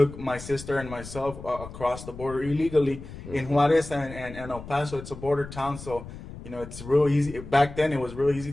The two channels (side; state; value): left; noise; rumble, 13 dB below the sound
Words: my sister and myself across the border illegally. Mm-hmm. In Juarez and El Paso. It's a border town, so it's real easy. Back then, it was real easy